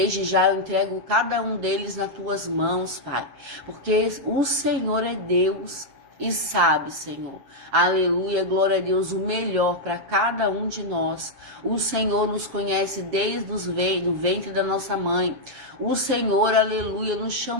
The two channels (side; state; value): left; late; 7.6 ms